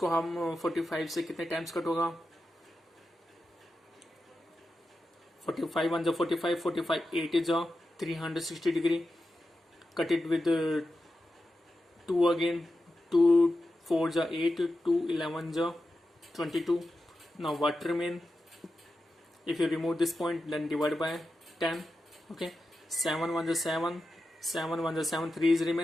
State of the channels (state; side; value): normal; both; correlation 0.91